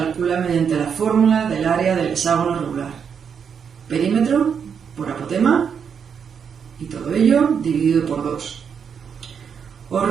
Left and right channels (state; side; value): quieter; left; 7.0 dB